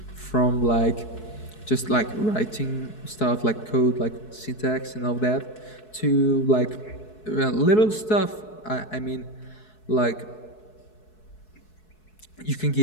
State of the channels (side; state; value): right; late; 4.7 ms